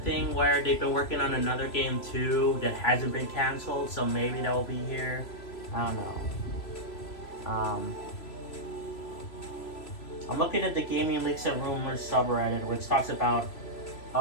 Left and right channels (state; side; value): late; right; 3.0 ms